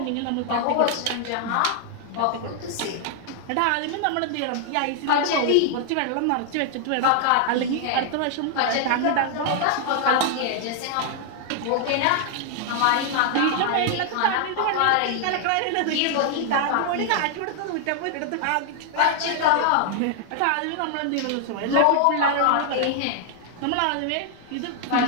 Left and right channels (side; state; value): both; different; correlation 0.00